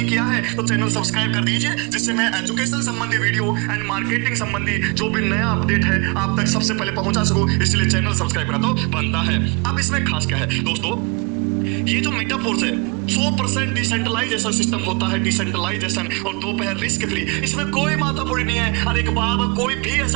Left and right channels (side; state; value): left; quieter; 30.1 dB